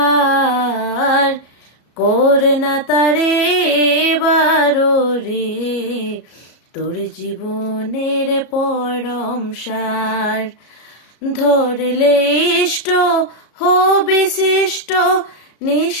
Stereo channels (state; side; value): late; right; 33 ms